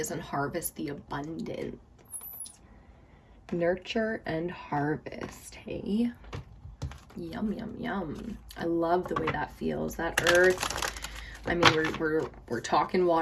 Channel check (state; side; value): identical; both; correlation 1.00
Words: and harvest the abundance. Nurture and harvest, hey? Yum, yum, yum. I love the way that feels. That earth, I mean, we're talking